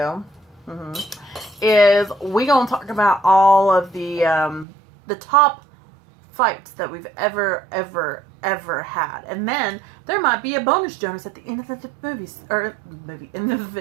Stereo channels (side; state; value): left; drops out; at 4.7 s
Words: is we gonna talk about all of the top fights that we've ever had, and then there might be a bonus Jonas at the end of the end of the